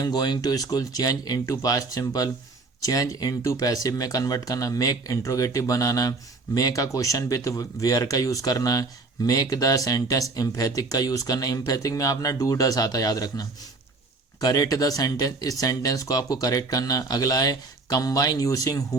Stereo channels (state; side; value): quieter; left; 3.7 dB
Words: going to school, change into past simple, change into passive में कन्वर्ट करना, मेक इंट्रोगेटिव बनाना, मेक का क्वेश्चन विथ वेयर का यूज करना है, मेक द सेंटेंस एम्फेथिक का यूज करना है। एम्फेथिक में अपना डू डस आता है, याद रखना। करेक्ट द सेंटेंस, इस सेंटेंस को आपको करेक्ट करना है। अगला है कंबाइन यूजिंग